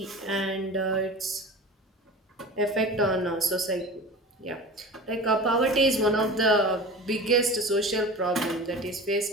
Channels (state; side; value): normal; both; correlation 0.35